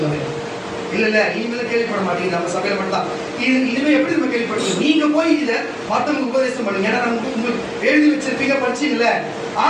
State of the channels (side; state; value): both; identical; correlation 1.00